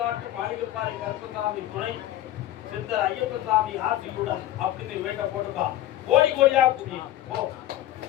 மாளிகைப்பாறை கருப்பசாமி துணை சித்தர் ஐயப்பசாமி ஆசியுடன் அப்படின்னு வேட்ட போட்டுக்கா. கோடி கோடியா புரியும்.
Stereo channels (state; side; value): quieter; right; 13.9 dB